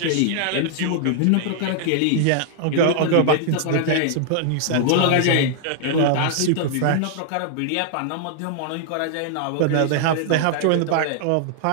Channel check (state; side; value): different; both; correlation -0.01